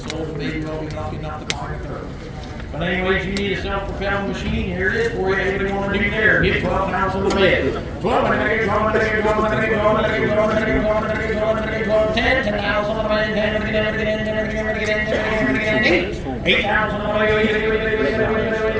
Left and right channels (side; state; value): both; identical; correlation 1.00